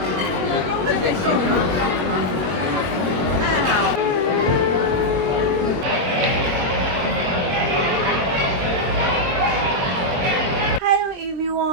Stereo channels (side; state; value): left; late; 22 ms